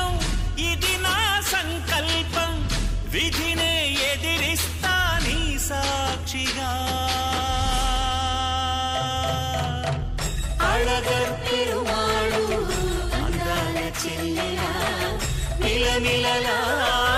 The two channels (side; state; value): both; identical; correlation 1.00